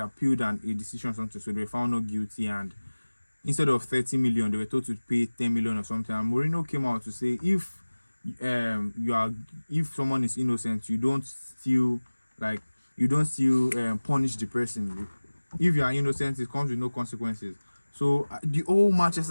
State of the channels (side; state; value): both; inverted; correlation -1.00